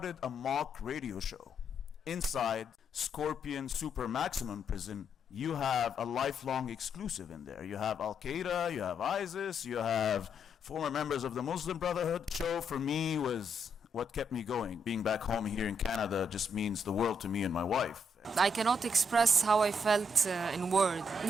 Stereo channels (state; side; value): normal; both; correlation 0.76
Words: a mock radio show. Inside Scorpion Super Maximum Prison, you have a lifelong exclusive in there. You have Al-Qaeda, you have ISIS, you have former members of the Muslim Brotherhood. The show for me was what kept me going. Being back home here in Canada just means the world to me and my wife. I cannot express how I felt in words.